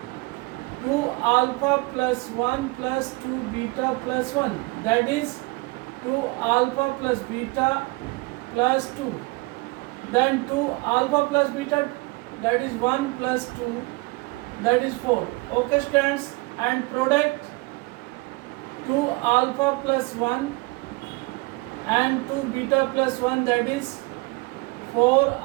2 alpha plus 1 plus 2 beta plus 1, that is 2 alpha plus beta plus 2, then 2 alpha plus beta that is 1 plus 2 that is 4. Okay students, and product 2 alpha plus 1 and 2 beta plus 1 that is 4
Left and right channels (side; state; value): left; quieter; 25.2 dB